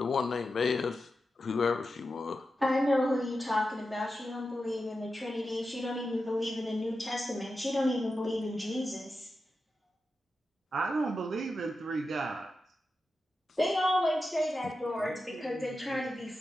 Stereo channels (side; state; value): both; normal; correlation 0.90